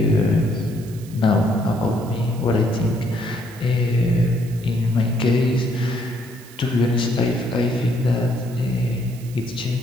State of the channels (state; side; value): noise; right; hiss, 21 dB below the sound